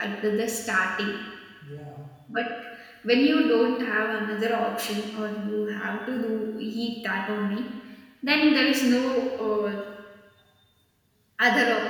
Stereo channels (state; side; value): identical; both; correlation 1.00